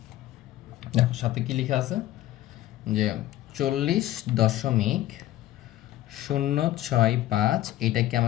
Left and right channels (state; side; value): quieter; right; 14.5 dB